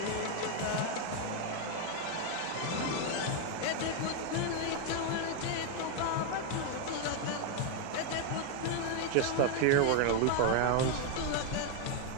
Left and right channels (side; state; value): both; different; correlation 0.01